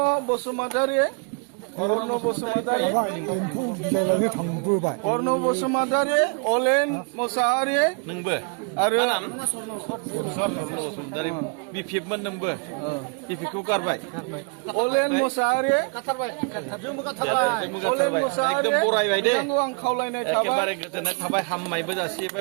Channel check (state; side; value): quieter; left; 36.6 dB